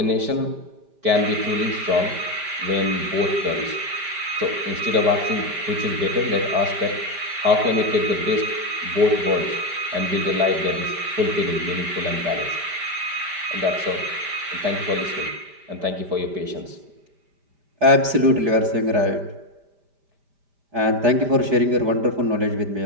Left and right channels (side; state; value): left; late; 5.1 ms